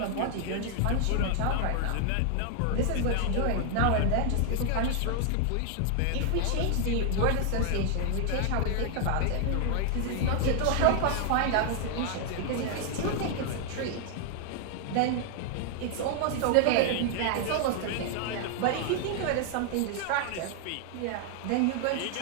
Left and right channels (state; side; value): different; both; correlation 0.00